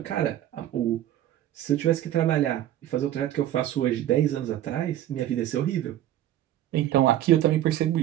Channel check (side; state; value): left; quieter; 12.7 dB